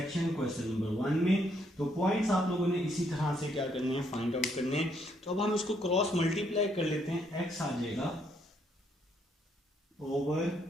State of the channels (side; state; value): both; normal; correlation 0.72